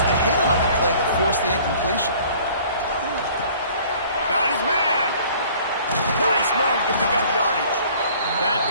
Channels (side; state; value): both; inverted; correlation -0.52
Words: the hit on the play that forced the incompletion. Got his man. Nice move to pick up yardage. That